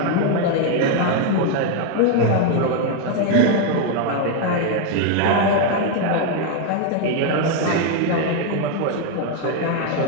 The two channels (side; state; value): both; different; correlation 0.01